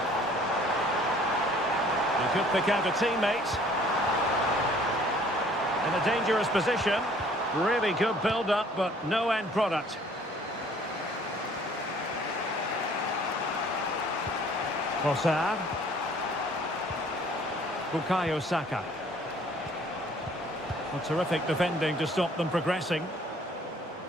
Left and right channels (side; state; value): both; normal; correlation 0.56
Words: He could pick out a teammate. In a dangerous position. Really good build-up, but no end product. Trossard. Bukayo Saka. A terrific defending to stop them progressing.